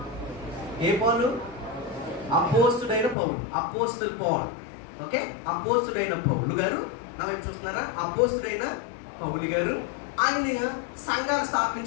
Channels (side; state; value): right; drops out; at 3.2 s